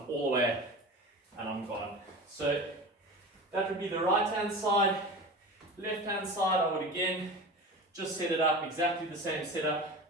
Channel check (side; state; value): both; normal; correlation 0.32